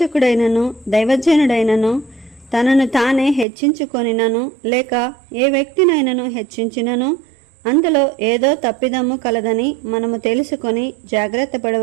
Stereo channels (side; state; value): left; drops out; at 3.5 s